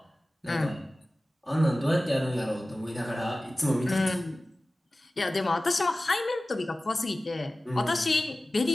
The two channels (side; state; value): both; normal; correlation 0.96